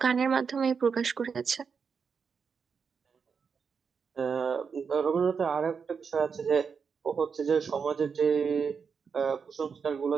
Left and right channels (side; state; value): left; quieter; 6.0 dB